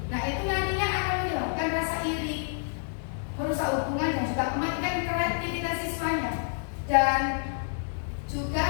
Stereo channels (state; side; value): silent; right; 59 dB below the other